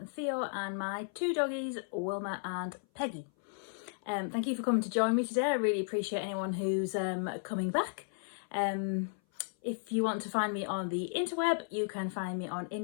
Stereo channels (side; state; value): right; silent; 55 dB below the other